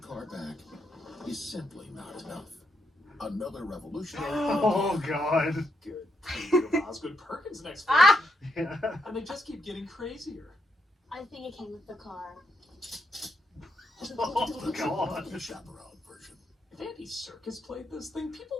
back is simply not enough. Another revolutionary. Oh god. Good. King of Osgood Perkins next week. Yeah. And they just keep getting crazier. I think it came with the car. Oh The trunk god. monkey chaperone version. If Andy Serkis played this thing, people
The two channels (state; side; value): normal; both; correlation 0.79